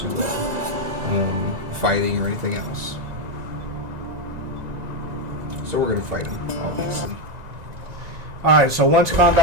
fighting or anything else. So we're going to fight him, obviously. Alright, so once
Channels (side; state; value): left; late; 1.9 ms